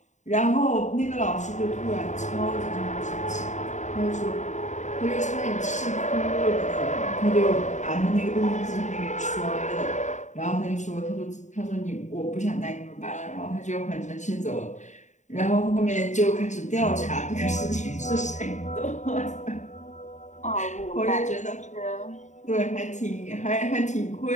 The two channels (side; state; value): right; late; 0.34 ms